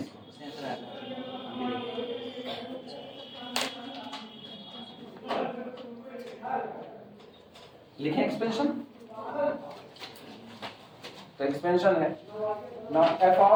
लिखें एक्सपेंशन, तो एक्सपेंशन है ना f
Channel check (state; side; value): identical; both; correlation 1.00